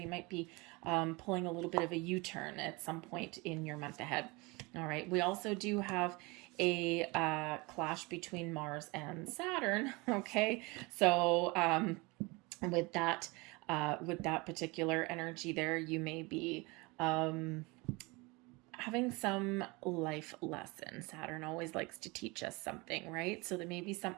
might be pulling a little bit of a U-turn at some point in your month ahead. All right, we also do have a clash between Mars and Saturn. Okay, so with that particular energy there, you may be having some life lesson. Saturn always likes to teach us something, right? So there may be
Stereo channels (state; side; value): quieter; left; 25.7 dB